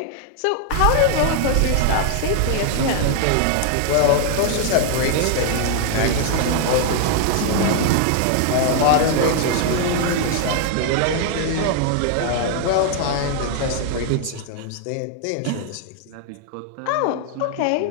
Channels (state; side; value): different; both; correlation 0.00